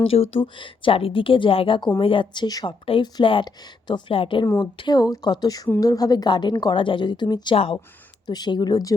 যেহেতু চারিদিকে জায়গা কমে যাচ্ছে, সবটাই ফ্ল্যাট, তো ফ্ল্যাটের মধ্যেও কত সুন্দরভাবে গার্ডেন করা যায় যদি তুমি চাও। তো সেগুলোর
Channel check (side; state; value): right; quieter; 3.9 dB